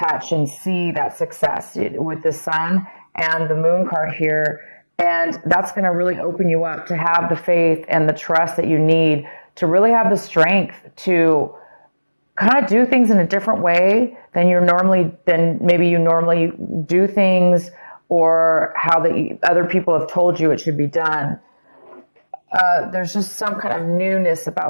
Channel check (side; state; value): both; inverted; correlation -1.00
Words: and see that success with the Sun and the Moon card here. And that's going to really open you up to have the faith and the trust that you need to really have the strength to kind of do things in a different way than maybe you normally do things, or how the other people have told you it should be done. There's just some kind of newness